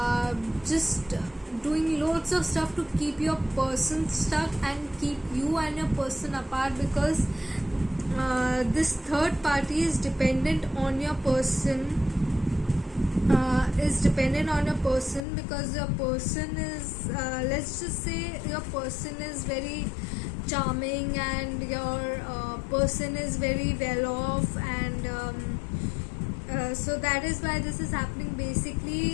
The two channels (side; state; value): right; drops out; at 15.2 s